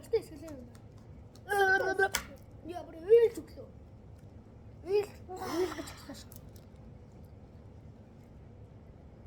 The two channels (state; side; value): identical; both; correlation 1.00